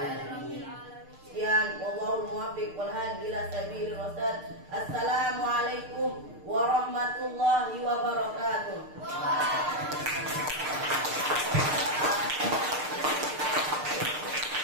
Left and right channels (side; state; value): left; late; 6.6 ms